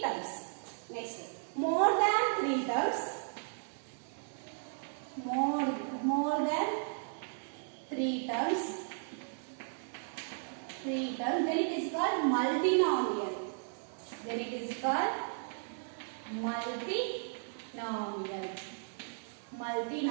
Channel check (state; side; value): silent; left; digital silence